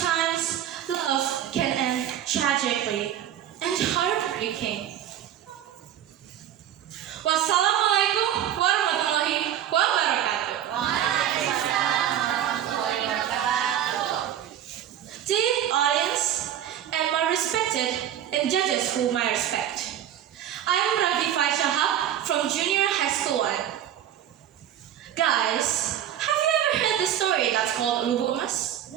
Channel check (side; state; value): left; quieter; 10.7 dB